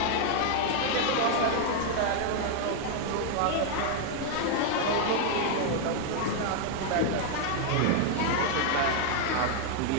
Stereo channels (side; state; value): both; different; correlation 0.00